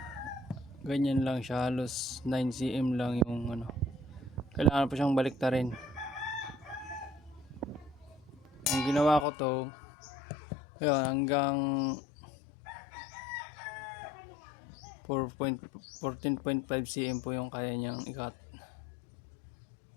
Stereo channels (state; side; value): drops out; right; at 9.2 s